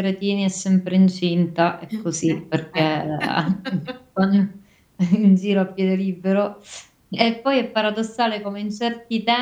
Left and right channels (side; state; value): both; identical; correlation 1.00